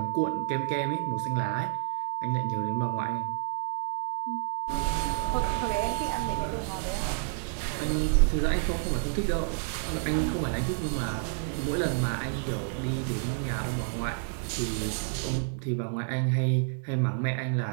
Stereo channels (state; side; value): silent; left; 58 dB below the other